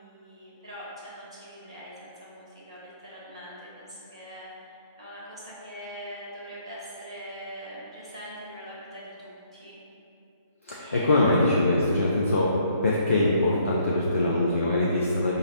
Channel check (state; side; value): inverted; both; correlation -0.67